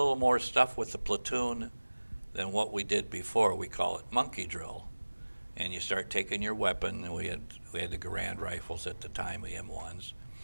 more stuff with the platoon than what we did before. We call it monkey drill. And you start taking your weapon, and we had the Garand rifles at the time, the M1s,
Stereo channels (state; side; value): inverted; both; correlation -1.00